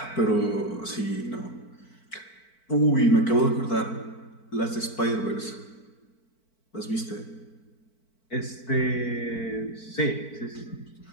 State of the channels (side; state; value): right; late; 4.5 ms